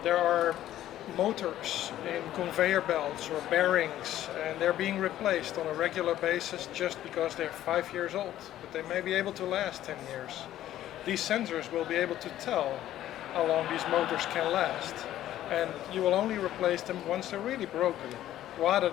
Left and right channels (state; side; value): quieter; right; 12.9 dB